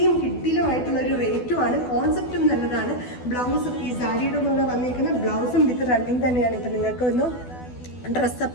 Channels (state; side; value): late; right; 12 ms